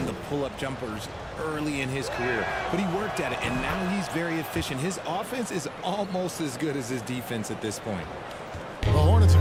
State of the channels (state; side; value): identical; both; correlation 1.00